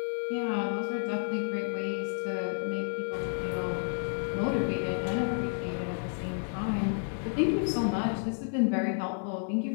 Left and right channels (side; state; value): right; silent; 57 dB below the other